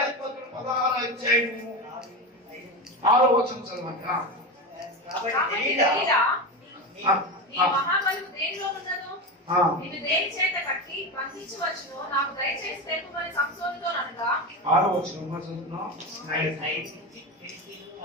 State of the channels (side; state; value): both; normal; correlation 0.19